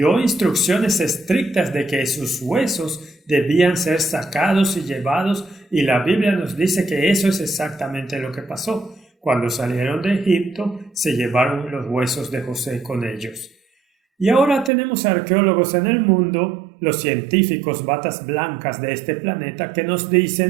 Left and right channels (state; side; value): drops out; left; at 14.7 s